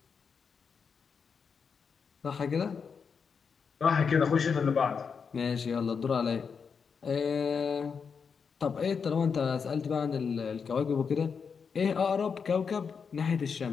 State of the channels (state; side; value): quieter; right; 6.0 dB